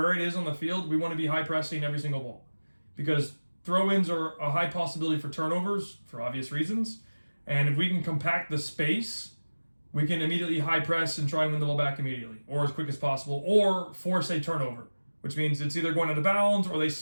it is on the field. We want to be high pressing every single ball. Because throw-ins are a high possibility for turnovers for obvious reasons. And if we can compact the space, we can immediately high press and try and win the ball back immediately, or as quick as possible, or force a turnover, which means it's either going out of bounds or they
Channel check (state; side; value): inverted; both; correlation -1.00